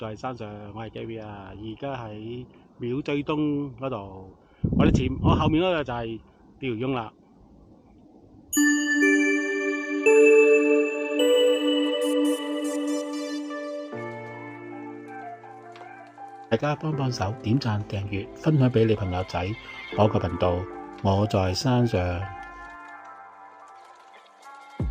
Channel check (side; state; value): both; identical; correlation 1.00